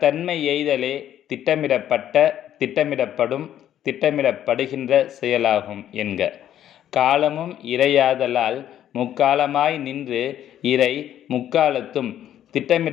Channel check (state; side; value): quieter; right; 11.1 dB